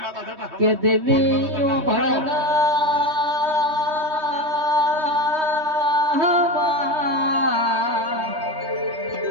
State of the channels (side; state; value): left; late; 3.2 ms